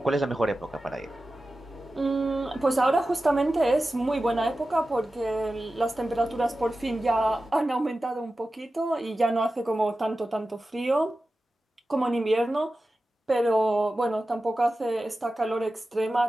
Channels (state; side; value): normal; both; correlation 0.94